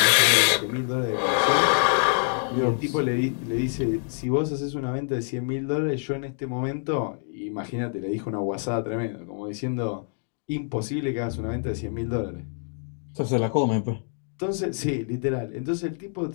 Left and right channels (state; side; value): silent; right; 59 dB below the other